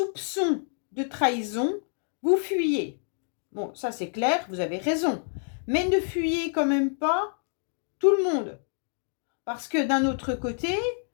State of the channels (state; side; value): silent; right; digital silence